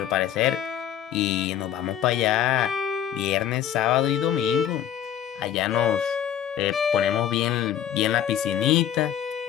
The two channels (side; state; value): right; quieter; 10.1 dB